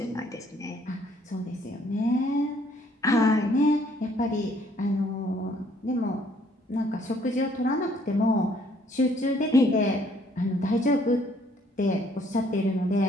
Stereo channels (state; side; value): normal; both; correlation 0.64